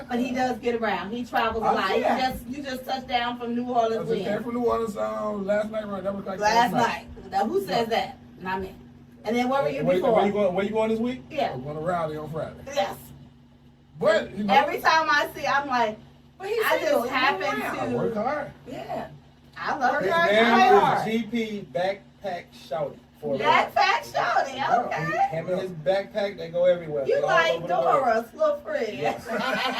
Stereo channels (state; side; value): identical; both; correlation 1.00